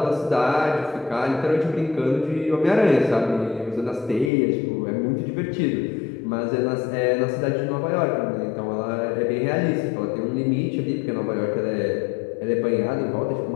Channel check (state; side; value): drops out; right; at 4.3 s